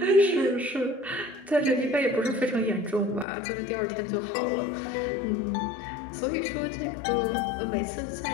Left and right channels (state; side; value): drops out; right; at 3.2 s